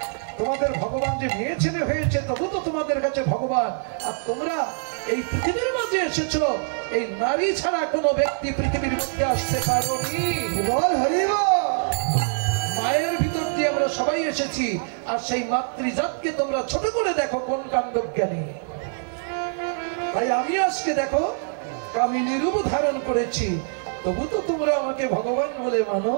তোমাদের ভগবান যে মেয়ে ছেলে হয়েছে তবু তো তোমাদের কাছে ভগবান। আর তোমরা এই পৃথিবীর মাঝে এসেছো, এই নারী ছাড়া কোনো ব্যক্তি পৃথিবীর মধ্যে আসতে পারোনি। মায়ের ভিতর দিয়ে আমরা সবাই এসেছি, আর সেই মাতৃজাতকে তোমরা ছোট করে দেখো কোন কাণ্ডজ্ঞানী। তাই আমি আজকে দেখো কামিনী রূপ ধারণ করেছি, তবু তো তোমরা আমাকে ভগবান বলে মানো।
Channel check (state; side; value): silent; left; 57 dB below the other